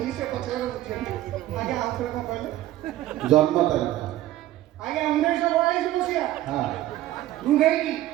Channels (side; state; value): left; quieter; 14.6 dB